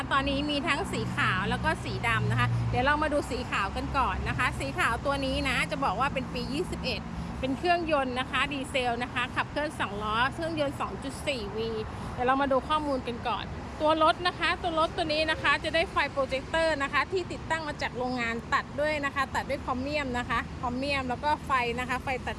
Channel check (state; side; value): identical; both; correlation 1.00